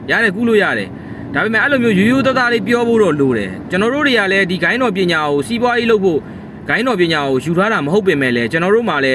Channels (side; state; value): both; identical; correlation 1.00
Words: ရတယ်ကူးလို့ရတယ်ဒါပေမဲ့အဲ့လိုမျိုးရိုးရိုးသားသားလေးပြောဖို့တော့လိုတယ်ကျွန်တော်တို့တွေကလည်းဒီဂိုင်းတော်ပညာကိုစီးပွားရေးလုပ်ဖို့ဂိုင်းတော်ပညာကိုယူထားတာမဟုတ်ပင်မဲ့လည်းကျွန်တော်တို့မှလည်